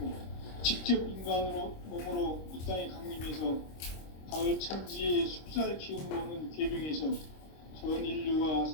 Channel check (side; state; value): right; late; 26 ms